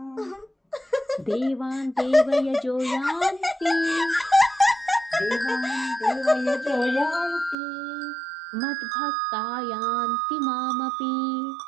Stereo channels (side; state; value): left; drops out; at 7.6 s